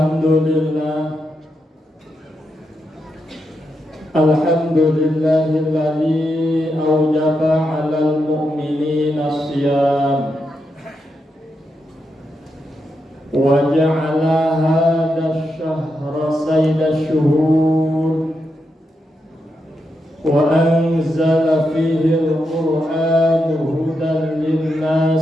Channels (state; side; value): normal; both; correlation 0.84